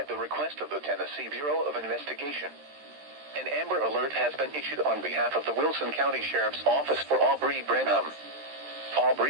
the request of the Tennessee Bureau of Investigation. An Amber Alert has been issued on behalf of the Wilson County Sheriff's Office for Aubrea Branham.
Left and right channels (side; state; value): left; late; 13 ms